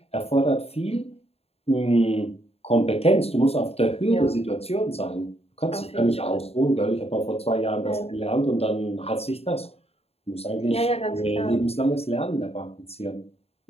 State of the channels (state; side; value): late; right; 0.29 ms